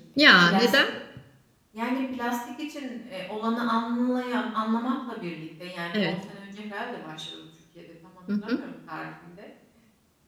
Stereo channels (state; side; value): identical; both; correlation 1.00